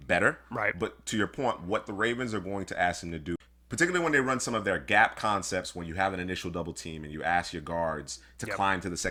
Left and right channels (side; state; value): both; identical; correlation 1.00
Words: better. Right. But to your point, what the Ravens are going to ask him to do, particularly when they run some of their gap concepts, when you have an initial double team and you ask your guards to climb to the